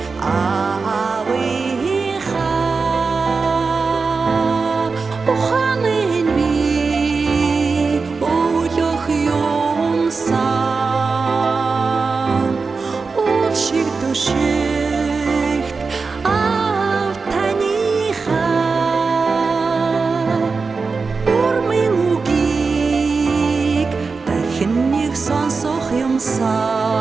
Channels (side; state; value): left; quieter; 4.5 dB